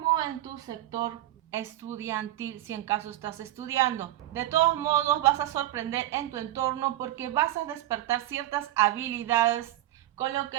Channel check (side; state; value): left; quieter; 14.8 dB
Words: en tu sector estudiantil, si en caso estás estudiando. De todos modos, vas a sorprender en tu entorno porque vas a despertar ciertas habilidades con lo